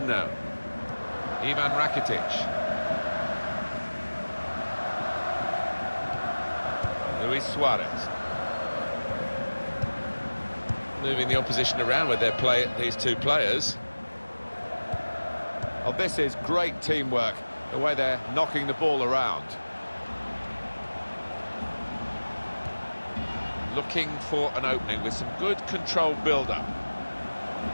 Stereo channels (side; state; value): both; inverted; correlation -1.00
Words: now. Ivan Rakitic. Luis Suarez. Moving the opposition around with these two players. Oh, this is great teamwork, the way they're knocking the ball around. Looking for an opening with some good controlled build-up.